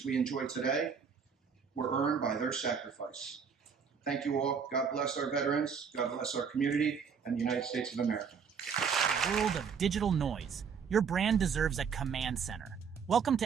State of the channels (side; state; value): left; quieter; 6.4 dB